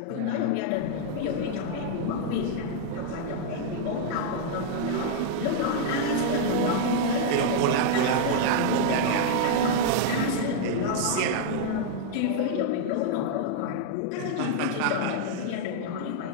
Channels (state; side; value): different; both; correlation -0.01